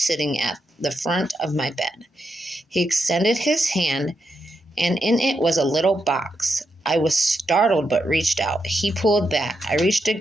at the front of my bed. He extended his hand, and in it was a little box. I was startled but reached out. He pulled back. I reached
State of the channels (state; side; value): normal; both; correlation 0.83